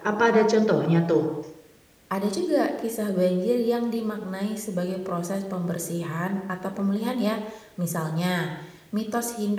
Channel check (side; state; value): both; identical; correlation 1.00